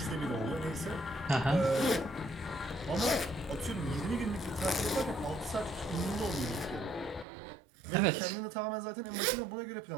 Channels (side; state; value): left; drops out; at 7.2 s